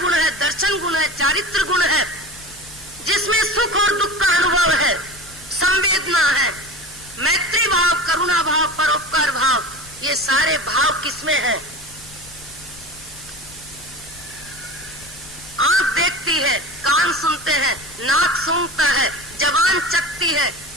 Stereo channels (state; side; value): noise; left; rumble, 22 dB below the sound